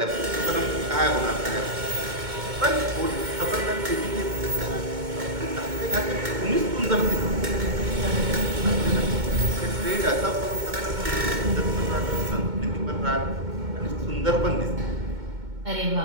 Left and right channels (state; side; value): late; left; 2.2 ms